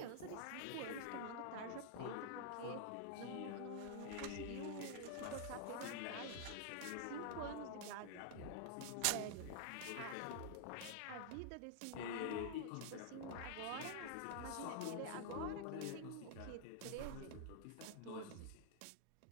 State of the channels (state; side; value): different; both; correlation -0.01